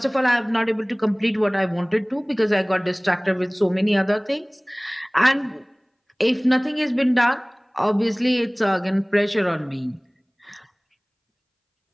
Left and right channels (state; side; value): identical; both; correlation 1.00